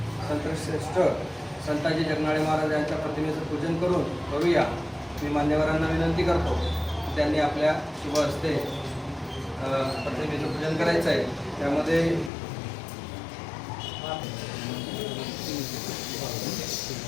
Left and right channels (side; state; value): right; drops out; at 12.3 s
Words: संतश्रेष्ठ संताजी जगनाडे महाराज यांच्या प्रतिमेचं पूजन करून करूया। मी मान्यवरांना विनंती करतो की त्यांनी आपल्या शुभ हस्ते प्रतिमेचं पूजन करायचं आहे। त्यामध्ये